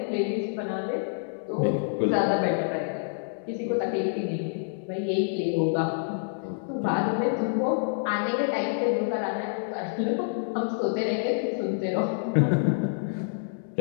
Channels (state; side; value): silent; right; digital silence